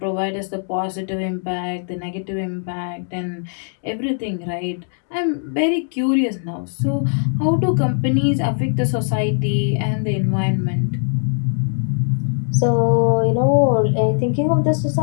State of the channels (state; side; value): silent; right; digital silence